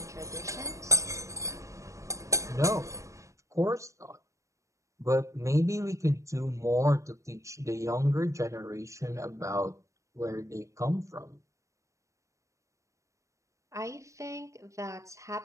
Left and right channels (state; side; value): late; left; 0.15 ms